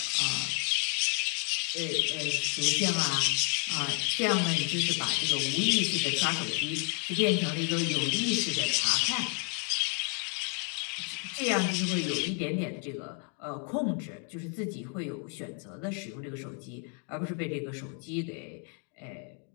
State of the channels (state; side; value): quieter; right; 35.9 dB